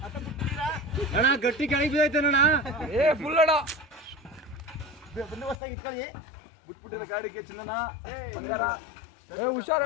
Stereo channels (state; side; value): drops out; right; at 5.6 s